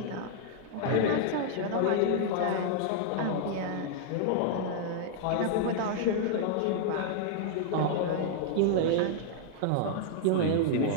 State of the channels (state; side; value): different; both; correlation -0.01